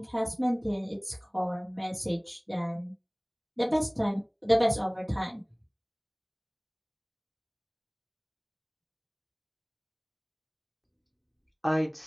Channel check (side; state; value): both; identical; correlation 1.00